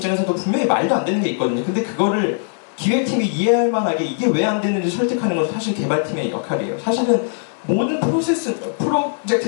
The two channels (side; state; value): right; silent; 66 dB below the other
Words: 분명히 말도 안 되는 게 있거든요. 근데 그거를 기획팀이 이해할 만하게 이게 왜 안 되는지 설득하는 건 사실 개발팀의 역할이에요. 사실은 모든